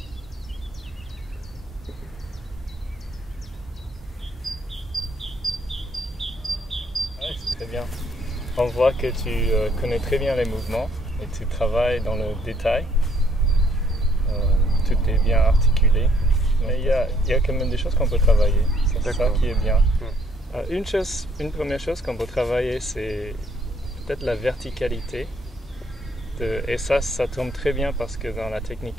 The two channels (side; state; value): both; normal; correlation 0.66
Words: Ouais, c'est très bien. On voit que tu connais très bien les mouvements et tu travailles dans le détail. Tout est bien articulé. Mais il y a quand même des choses qu'on peut travailler. C'est ça qui est bien. Une première chose qu'on peut travailler, c'est peut-être la verticalité. Et ça tombe très bien parce que dans la technique